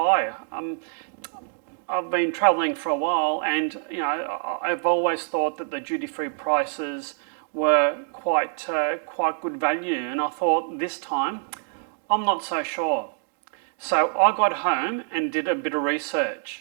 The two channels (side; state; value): left; silent; 61 dB below the other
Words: I've been travelling for a while and I've always thought that the duty-free prices were quite good value, and I thought this time I'm not so sure. So I got home and did a bit of